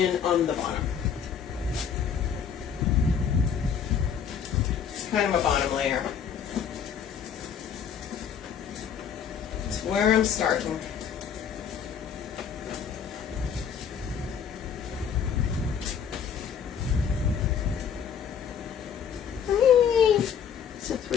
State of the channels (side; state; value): right; quieter; 7.6 dB